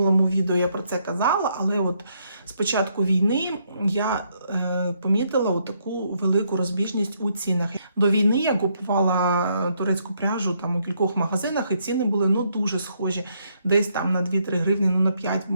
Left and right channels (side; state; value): both; inverted; correlation -0.73